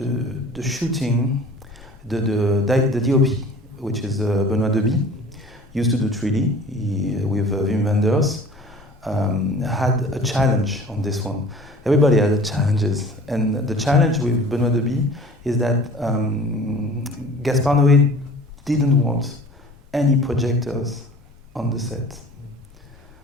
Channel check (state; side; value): normal; both; correlation 0.46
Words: shooting, the DOP, which is Benoît Deby, used to do 3D with Wim Wenders, had a challenge on this one. Everybody had challenges, and the challenge with Benoît Deby is that Gaspar Noé didn't want any projectors on the set,